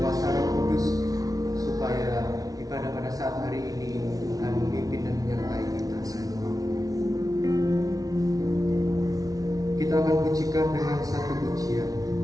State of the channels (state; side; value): late; left; 0.18 ms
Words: Roh Kudus supaya ibadah pada saat hari ini Tuhan memimpin dan menyertai kita semua. Kita akan pujikan dengan satu pujian.